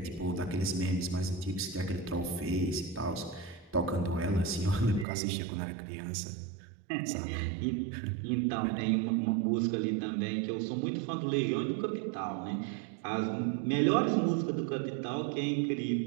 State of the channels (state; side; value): drops out; left; at 5.1 s